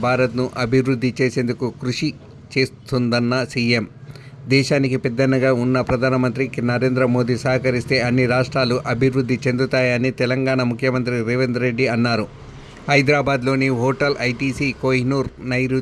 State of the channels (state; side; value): identical; both; correlation 1.00